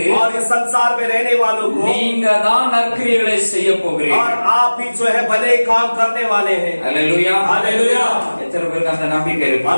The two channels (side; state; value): both; inverted; correlation -1.00